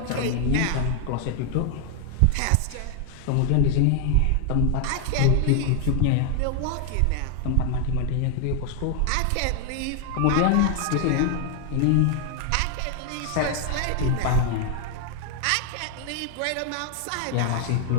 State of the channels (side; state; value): both; different; correlation 0.00